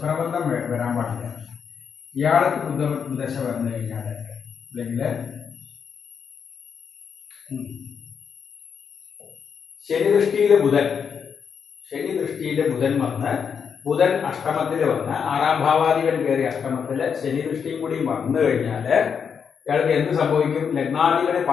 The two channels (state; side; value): quieter; right; 6.8 dB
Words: വരാൻ പാടില്ല. ഇയാൾക്ക് ബുധദശ വന്നു കഴിഞ്ഞാല്, അല്ലെങ്കിൽ ശനി ദൃഷ്ടിയിലെ ബുധൻ വന്ന്, ബുധൻ അഷ്ടമത്തിൽ വന്ന് 6ാം ഭാവാധിപൻ കയറി അഷ്ടമത്തില് ശനി ദൃഷ്ടിയും കൂടി വന്നു കഴിഞ്ഞാല് ഇയാൾക്ക് എന്ത് സംഭവിക്കും? ലഗ്നാധിപന്